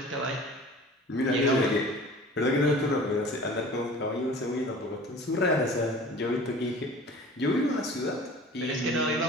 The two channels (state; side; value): normal; both; correlation 0.43